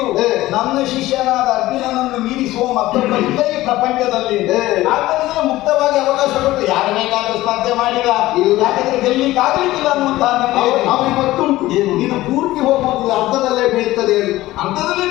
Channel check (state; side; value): quieter; right; 16.8 dB